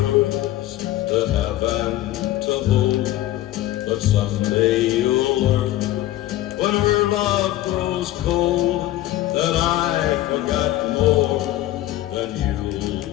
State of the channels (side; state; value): right; quieter; 14.8 dB